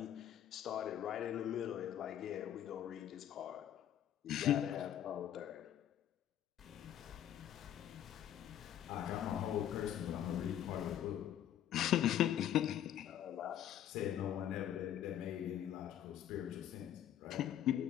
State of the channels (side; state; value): right; quieter; 10.8 dB